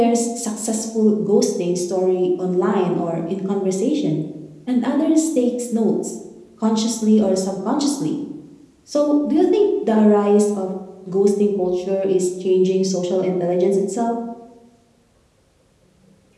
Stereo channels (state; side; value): identical; both; correlation 1.00